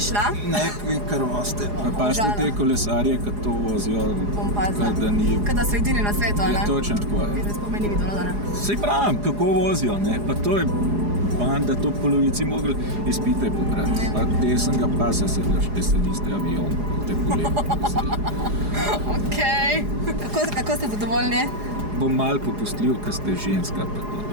šla? Ne, kar voste. Pazite te kolesarje, kad to vozijo, da ni... Kada so edini na svetu, ne? Ja, točno tako je. Zdaj spomeni videlo, da ne? Sej pravim, kako vozijo, ne? Pa to je banda, to polovici mogli izpite pobrati. Pa desnega pasa sedlaš, te sediste avion, te kolegi. Okej. Kako ste zadovoljni? Bom malo popustljiv, kad ste ženska, pa to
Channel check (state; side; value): late; left; 4.8 ms